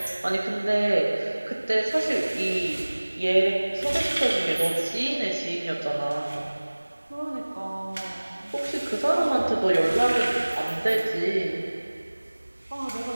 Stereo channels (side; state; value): both; inverted; correlation -1.00